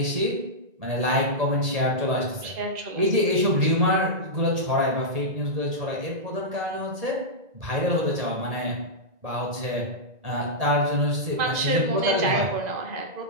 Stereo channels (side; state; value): left; late; 1.9 ms